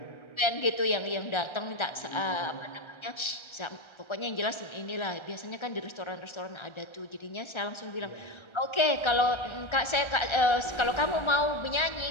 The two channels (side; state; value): right; late; 1.3 ms